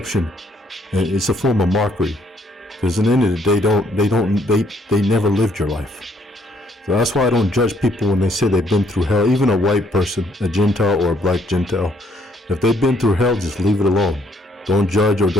And it's a form of mockery, because at the end of the day, they never lived your life. So that's why I don't judge people when they say they've been through hell. Even a white person, a Gentile or a black Gentile, if they've been through hell, just leave it alone. Don't judge, or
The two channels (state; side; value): normal; both; correlation 0.68